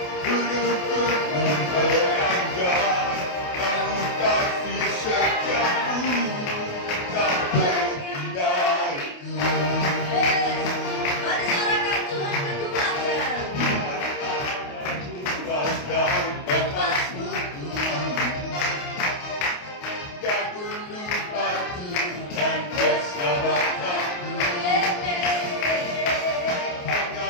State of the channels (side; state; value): right; late; 28 ms